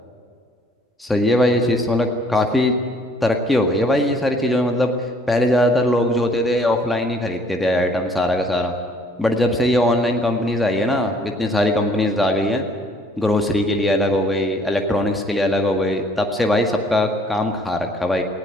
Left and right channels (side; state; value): both; normal; correlation 0.59